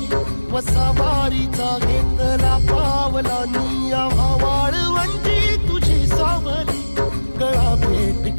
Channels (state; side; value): inverted; both; correlation -1.00